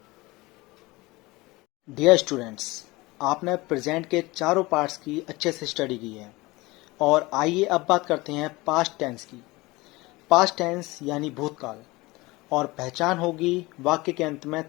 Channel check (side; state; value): right; quieter; 21.8 dB